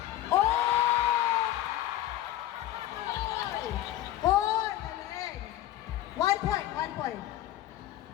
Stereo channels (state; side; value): quieter; right; 13.8 dB